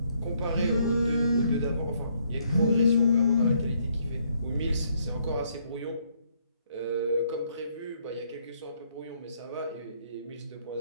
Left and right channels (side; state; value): both; inverted; correlation -0.70